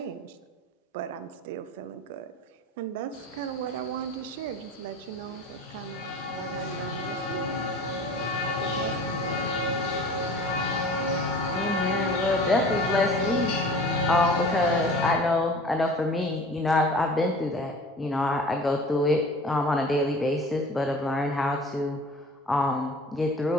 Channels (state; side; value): normal; both; correlation 0.42